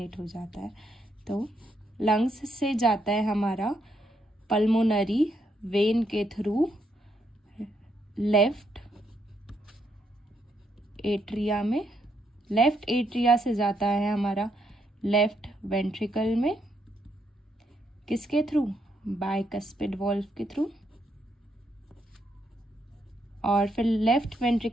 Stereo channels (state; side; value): normal; both; correlation 0.76